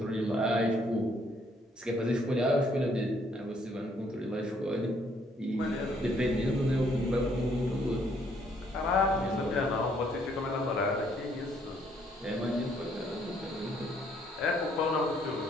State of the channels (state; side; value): normal; both; correlation 0.67